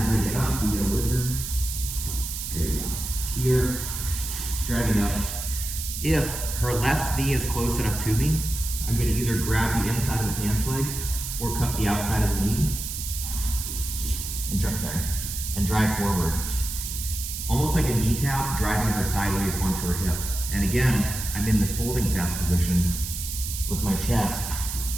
I get up, you get a whizzer. There you go. Here, driving up. If her left knee is close enough to me, I'm going to either grab the inside of the pants leg or cut the outside of the knee and drive forward. Almost like a knee tap, driving her sideways onto her hip. And again, I'm in this holding pass position with my chest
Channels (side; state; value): right; noise; hiss, 6 dB below the sound